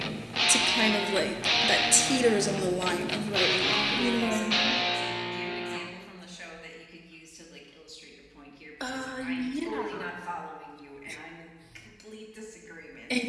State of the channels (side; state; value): both; identical; correlation 1.00